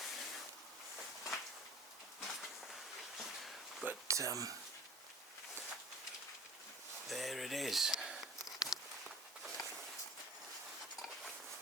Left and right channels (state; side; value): normal; both; correlation 0.43